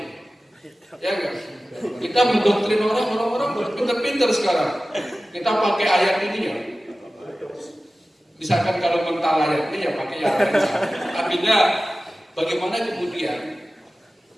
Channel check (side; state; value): both; normal; correlation 0.96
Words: Ya enggak? Kita mendoktrin orang pinter-pinter sekarang. Kita pakai ayat ini ya. Misalkan kalau mental ayat ini ya pakai yang lain. Artinya bagaimana kemudian